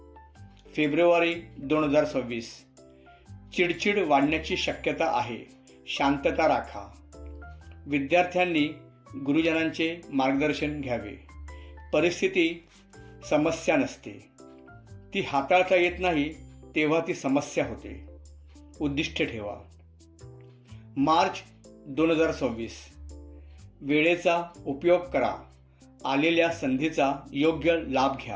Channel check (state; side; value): identical; both; correlation 1.00